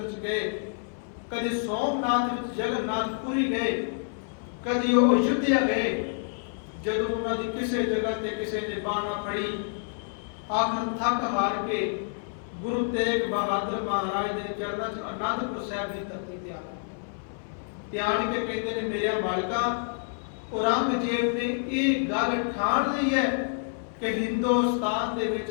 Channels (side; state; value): right; silent; 58 dB below the other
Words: 'ਚ ਗਏ, ਕਦੀ ਸੋਮਨਾਥ ਵਿੱਚ ਜਗਨਨਾਥਪੁਰੀ ਗਏ, ਕਦੀ ਉਹ ਅਯੁੱਧਿਆ ਗਏ। ਜਦੋਂ ਉਹਨਾਂ ਦੀ ਕਿਸੇ ਜਗ੍ਹਾ ਤੇ ਕਿਸੇ ਨੇ ਬਾਹ ਨਾ ਫੜੀ, ਆਖਰ ਥੱਕ ਹਾਰ ਕੇ ਗੁਰੂ ਤੇਗ ਬਹਾਦਰ ਮਹਾਰਾਜ ਦੇ ਚਰਨਾਂ 'ਚ ਅਨੰਦਪੁਰ ਸਾਹਿਬ ਦੀ ਧਰਤੀ ਤੇ ਆ ਕੇ ਕਹਿੰਦੇ ਨੇ, ਮੇਰਿਆ ਮਾਲਕਾ, ਔਰੰਗਜ਼ੇਬ ਨੇ ਇਹ ਗੱਲ ਠਾਣ ਲਈ ਹੈ ਕਿ ਹਿੰਦੁਸਤਾਨ ਦੇ ਵਿੱਚ